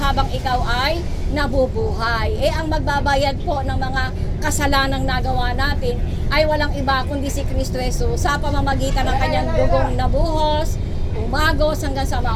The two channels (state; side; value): identical; both; correlation 1.00